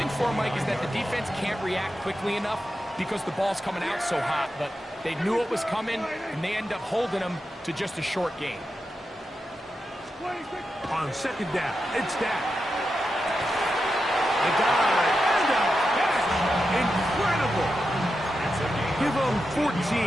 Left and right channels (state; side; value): normal; both; correlation 0.89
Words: for, Mike, is that the defense can't react quickly enough because the ball's coming out so hot. But they knew it was coming, and they end up holding them to just a short gain. On second down, it's Dak. The guy. Incredible! Give them